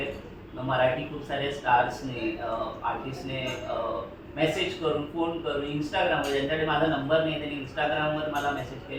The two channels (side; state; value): both; identical; correlation 1.00